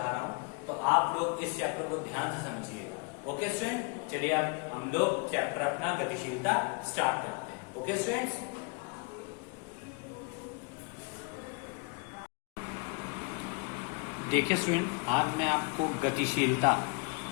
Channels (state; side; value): quieter; right; 31.9 dB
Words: रहा हूँ, तो आप लोग इस चैप्टर को ध्यान से समझिएगा। ओके स्टूडेंट, चलिए अब हम लोग चैप्टर अपना गतिशीलता स्टार्ट करते हैं। ओके स्टूडेंट्स, देखिए स्टूडेंट, आज मैं आपको गतिशीलता